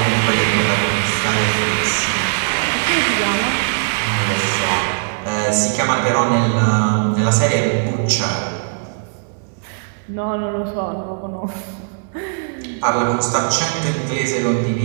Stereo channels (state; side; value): silent; left; 67 dB below the other